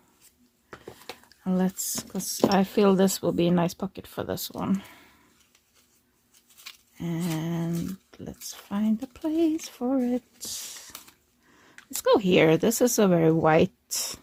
And let's, because I feel this will be a nice pocket for this one. And let's find a place for it. Let's go here. This is a very white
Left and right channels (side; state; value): both; identical; correlation 1.00